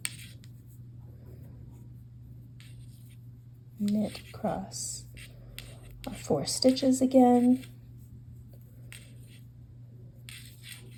knit across our 4 stitches again,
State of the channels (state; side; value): identical; both; correlation 1.00